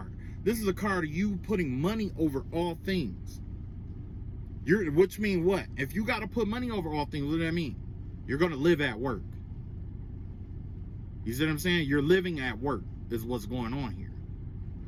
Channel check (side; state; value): both; identical; correlation 1.00